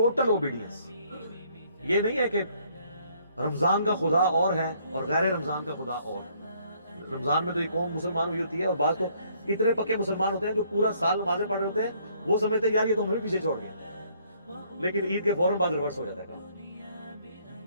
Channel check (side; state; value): both; inverted; correlation -0.65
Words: اوبیڈینس۔ یہ نہیں ہے کہ رمضان کا خدا اور ہے اور غیر رمضان کا خدا اور ہے۔ رمضان میں تو یہ قوم مسلمان ہوئی ہوتی ہے، اور بعض تو اتنے پکے مسلمان ہوتے ہیں جو پورا سال نمازیں پڑھ رہے ہوتے ہیں، وہ سمجھتے ہیں یار یہ تو ہمیں پیچھے چھوڑ گیا، لیکن عید کے فوراً بعد ریورس ہو جاتا ہے کام۔